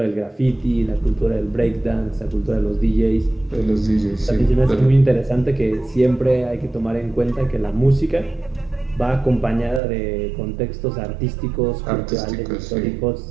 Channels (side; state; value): left; drops out; at 9.8 s